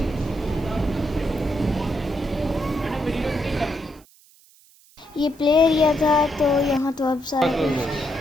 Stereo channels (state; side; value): noise; right; hiss, 28 dB below the sound